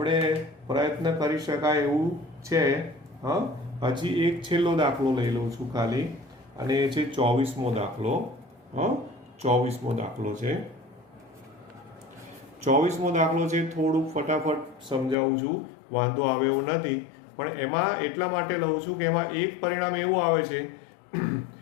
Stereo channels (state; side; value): drops out; right; at 15.2 s